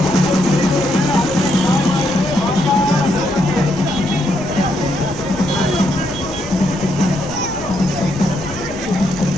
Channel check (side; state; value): right; noise; rumble, 15 dB below the sound